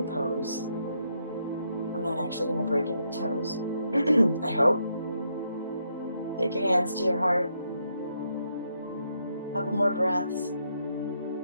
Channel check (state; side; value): inverted; both; correlation -0.77